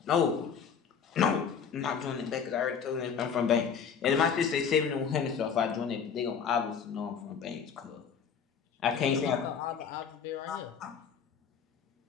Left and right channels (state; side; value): quieter; right; 6.8 dB